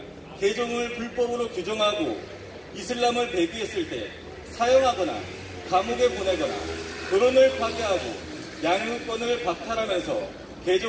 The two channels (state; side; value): identical; both; correlation 1.00